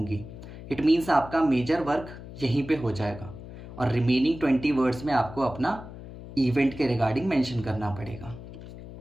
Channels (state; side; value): noise; left; hum, 14 dB below the sound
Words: इट मीन्स आपका मेजर वर्क यहीं पे हो जाएगा, और रिमेनिंग 20 वर्ड्स में आपको अपना इवेंट के रिगार्डिंग मेंशन करना पड़ेगा।